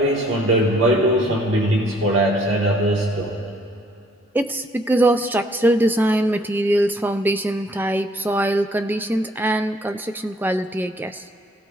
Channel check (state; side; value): normal; both; correlation 0.62